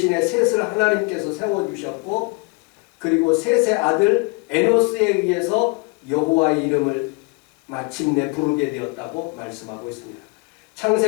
셋을 하나님께서 세워주셨고 그리고 셋의 아들 에노스에 의해서 여호와의 이름을 마침내 부르게 되었다고 말씀하고 있습니다.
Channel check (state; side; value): quieter; right; 29.2 dB